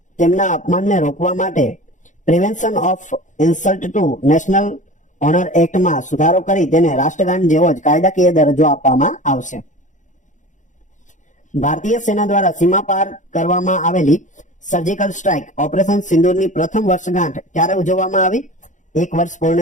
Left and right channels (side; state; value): right; late; 0.36 ms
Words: તેમના અપમાનને રોકવા માટે prevention of insult to national honour એક્ટમાં સુધારો કરી તેને રાષ્ટ્રગાન જેવો જ કાયદાકીય દરજ્જો આપવામાં આવશે. ભારતીય સેના દ્વારા સીમા પાર કરવામાં આવેલી સર્જિકલ સ્ટ્રાઇક ઓપરેશન સિંદૂરની પ્રથમ વર્ષગાંઠ ક્યારે ઉજવવામાં આવી? 1 વર્ષ